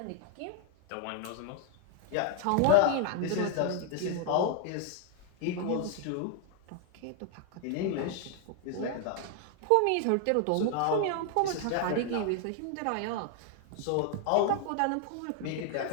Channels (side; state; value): both; different; correlation 0.00